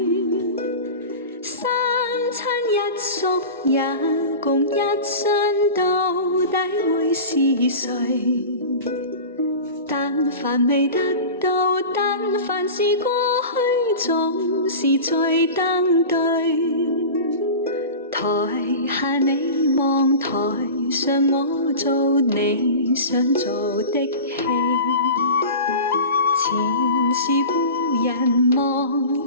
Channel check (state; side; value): inverted; both; correlation -0.32